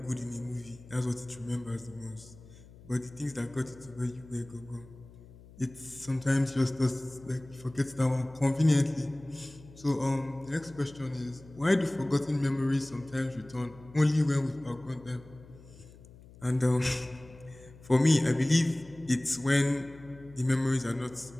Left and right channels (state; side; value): noise; left; hum, 21 dB below the sound